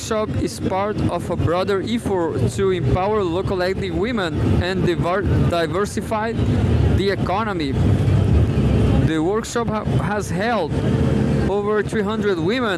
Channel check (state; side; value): identical; both; correlation 1.00